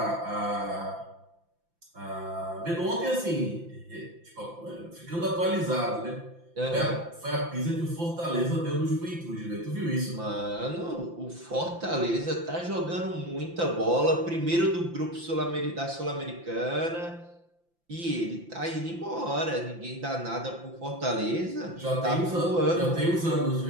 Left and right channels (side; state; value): left; late; 5.8 ms